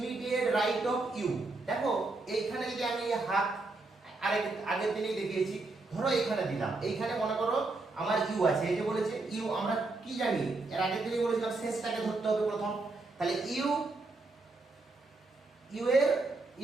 রাইট অফ ইউ। দেখো এইখানে যদি আমি হাত আগের দিনেই দেখিয়েছি, ধরো এইখানে দিলাম, এইখানে মনে করো আমার ইউ আছে, এই যে বলেছে ইউ, আমরা কি জানি এর আগের দিনেই বলেছিলাম শেষটাকে ধরতে হবে প্রথম। তাহলে ইউ, ইউ এর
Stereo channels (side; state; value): left; quieter; 3.4 dB